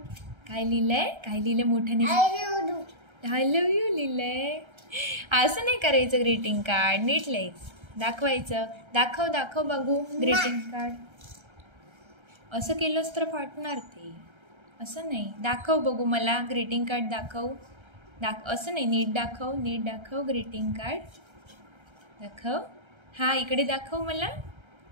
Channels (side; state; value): left; late; 1.3 ms